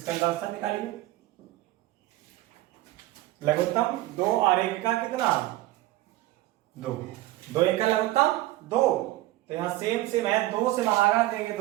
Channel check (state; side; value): quieter; left; 16.8 dB